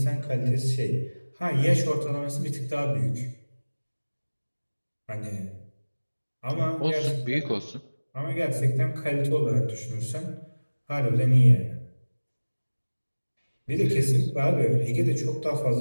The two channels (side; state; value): both; inverted; correlation -1.00